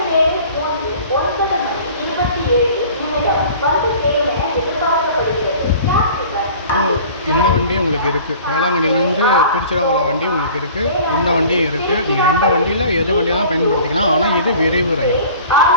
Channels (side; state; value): both; inverted; correlation -0.45